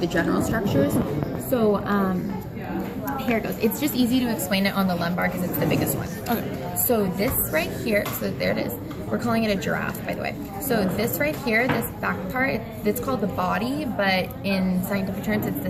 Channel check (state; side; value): identical; both; correlation 1.00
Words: general structures. So here it goes. It's just easy to explain it on the lumbar because it's the biggest one. Okay. So this right here, so there it is. We're calling it a giraffe, by the way. So this right here, this back part, it's called the body, but in scientific terms, it's the